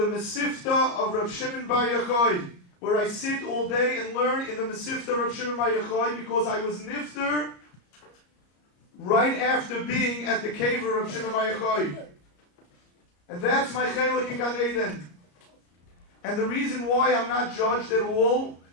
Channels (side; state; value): right; late; 34 ms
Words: Mesifta of Reb Shimon Bar Yochai, where I sit all day and learn in the Mesifta of Reb Shimon Bar Yochai, because I was nifter right after being at the cave of Reb Shimon Bar Yochai. And that's my chelik in Gan Eden. And the reason why I'm not judged at all